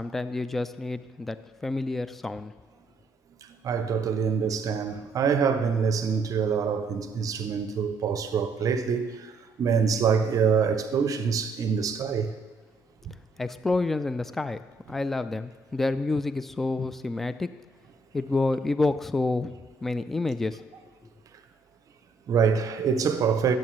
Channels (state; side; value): quieter; left; 3.1 dB